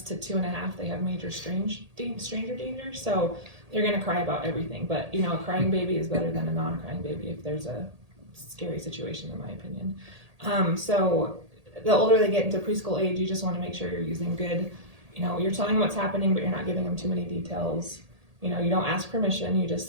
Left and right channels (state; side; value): late; left; 1.8 ms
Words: to 2.5, they have major stranger danger, so they're gonna cry about everything. But you know, a crying baby is better than a non-crying baby if there's a scary situation, in my opinion. So the older they get into preschool age, you just want to make sure you're using good, you know, you're telling them what's happening, but you're not giving them too many details. You know, you don't ask permission, you just